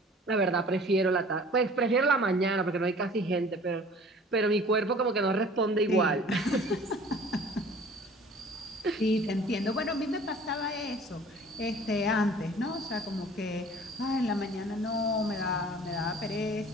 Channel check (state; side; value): normal; both; correlation 0.48